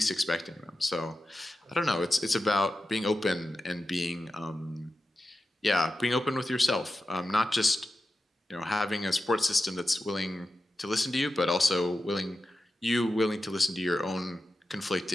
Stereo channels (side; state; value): both; normal; correlation 0.92